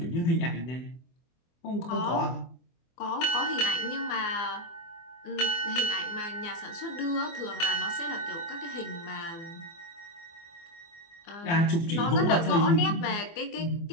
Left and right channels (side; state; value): right; late; 24 ms